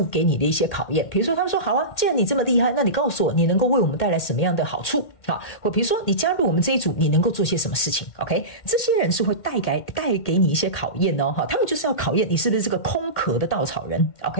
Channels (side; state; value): right; late; 2.1 ms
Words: 給你的一些考驗。比如說，他們說好啊，既然你這麼厲害，那你告訴我，你能夠為我們帶來什麼樣的好處？好，或比如說你加入我們這一組，你能夠做些什麼事情 ？OK， 這些人是會帶給你一些考驗哦，哈，他們就是要考驗你是不是這個空殼的稻草人。